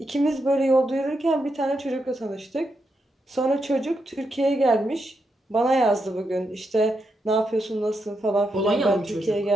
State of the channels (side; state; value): both; normal; correlation 0.83